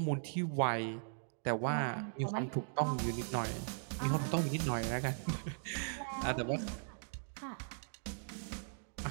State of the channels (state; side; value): silent; left; digital silence